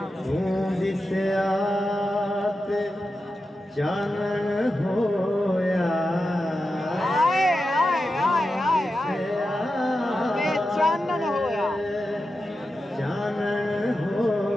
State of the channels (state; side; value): normal; both; correlation 0.90